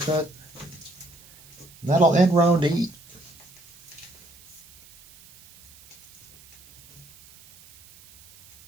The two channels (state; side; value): noise; right; hiss, 24 dB below the sound